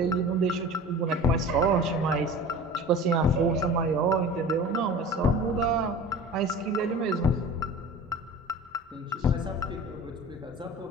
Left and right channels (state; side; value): normal; both; correlation 0.38